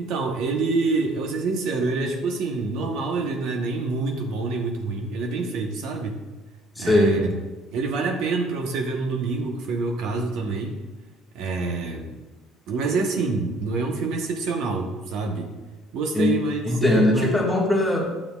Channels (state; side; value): normal; both; correlation 0.59